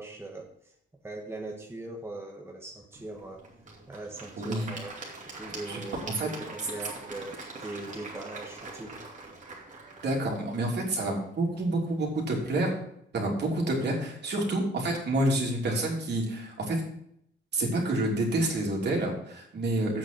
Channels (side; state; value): both; normal; correlation 0.55